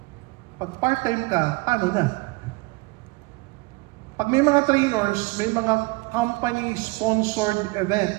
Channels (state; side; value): quieter; left; 25.9 dB